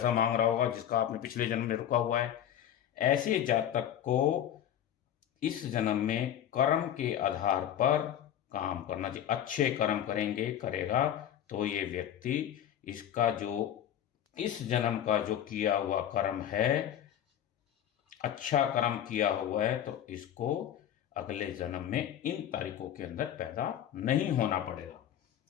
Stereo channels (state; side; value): quieter; right; 10.4 dB